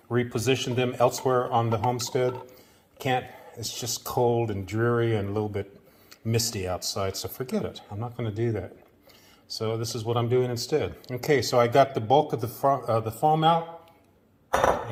them elsewhere on the homestead. It's just cold and dreary and a little bit misty outside, so forget it. I'm not going to do that. So this is what I'm doing instead. Okay, so I got the bulk of the foam out,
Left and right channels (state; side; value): identical; both; correlation 1.00